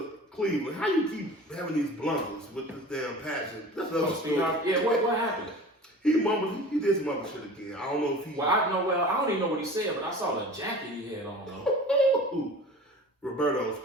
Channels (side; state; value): both; normal; correlation 0.39